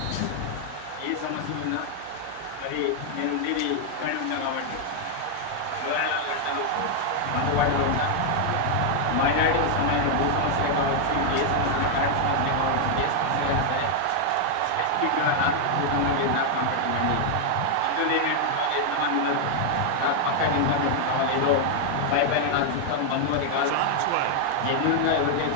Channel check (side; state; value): both; different; correlation 0.00